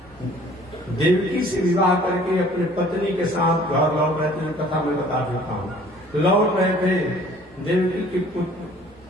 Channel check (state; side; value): normal; both; correlation 0.53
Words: देवकी से विवाह करके अपने पत्नी के साथ घर लौट रहे थे। कथा मैं बता देता हूँ। लौट रहे थे, देवकी के